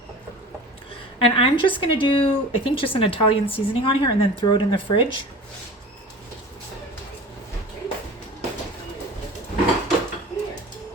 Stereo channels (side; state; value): both; normal; correlation 0.39